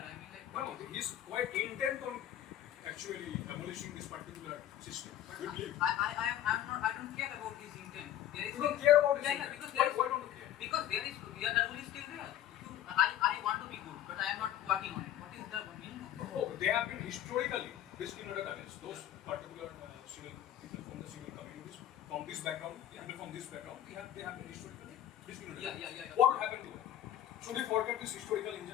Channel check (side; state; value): right; quieter; 11.9 dB